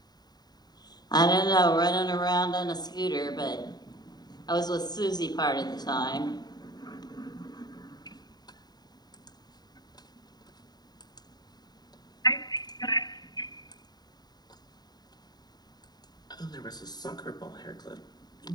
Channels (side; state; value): right; late; 0.20 ms